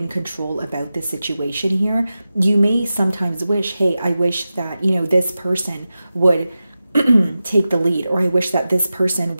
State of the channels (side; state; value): both; inverted; correlation -0.94